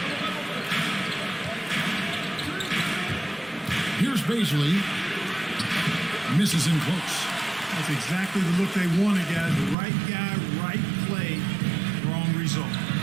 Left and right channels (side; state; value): left; drops out; at 9.8 s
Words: Here's Baisley. Misses in close. That's exactly the look they wanted, guys. The right guy, right play, wrong result.